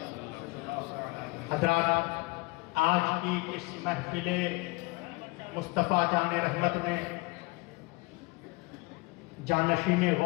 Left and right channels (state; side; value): quieter; right; 24.8 dB